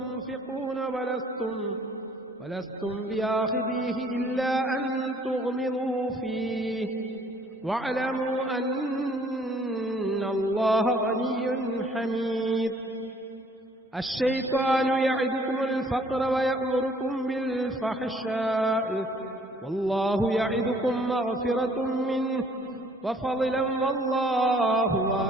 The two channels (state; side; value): normal; both; correlation 0.59